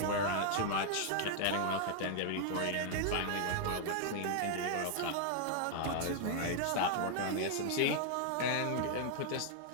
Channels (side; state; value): both; different; correlation 0.00